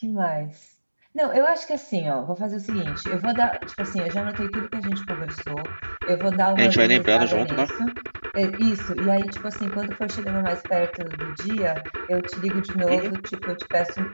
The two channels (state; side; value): inverted; both; correlation -1.00